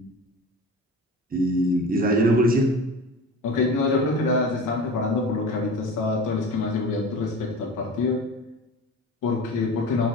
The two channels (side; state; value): both; normal; correlation 0.35